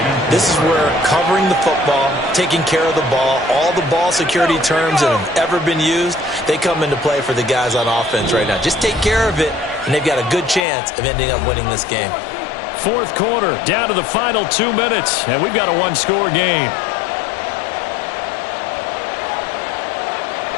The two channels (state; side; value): drops out; right; at 10.6 s